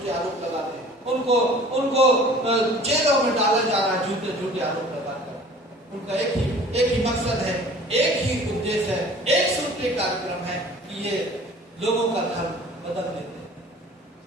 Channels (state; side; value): normal; both; correlation 0.47